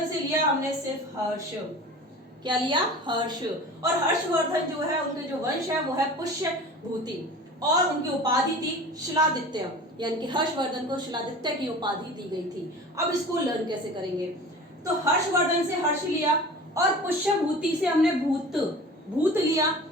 से लिया हमने सिर्फ हर्ष। क्या लिया? हर्ष। और हर्षवर्धन जो है उनके जो वंश है वो है पुष्यभूति, और उनकी उपाधि थी शिलादित्य, यानी कि हर्षवर्धन को शिलादित्य की उपाधि दी गई थी। अब इसको लर्न कैसे करेंगे? तो हर्षवर्धन से हर्ष लिया, और पुष्यभूति से हमने भूत लिया,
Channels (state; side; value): normal; both; correlation 0.38